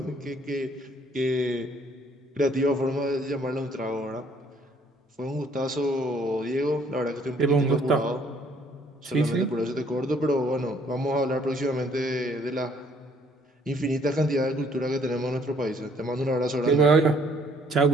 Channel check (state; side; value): normal; both; correlation 0.62